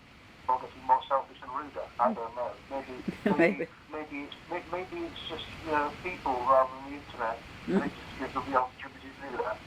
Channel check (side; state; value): both; identical; correlation 1.00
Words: getting more selfish and ruder. I don't know. Maybe it's just, you know, people rather than the internet. They just give them the opportunity to do that.